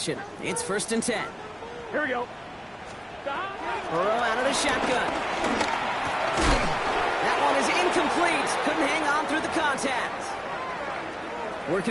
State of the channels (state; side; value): identical; both; correlation 1.00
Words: It's first and 10. Here we go. Burrow out of the shotgun. That one is incomplete. Couldn't hang on through the contact.